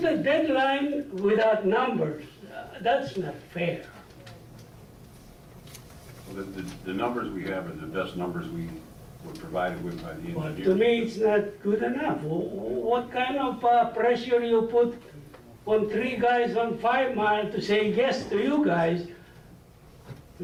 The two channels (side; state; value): both; identical; correlation 1.00